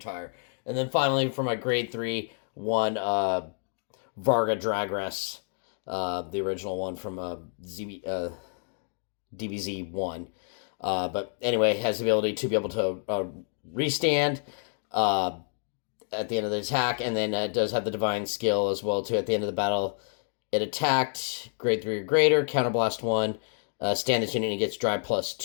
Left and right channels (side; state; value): right; silent; 59 dB below the other